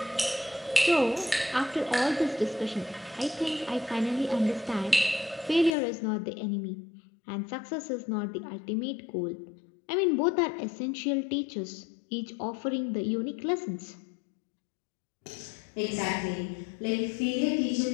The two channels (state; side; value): drops out; right; at 5.7 s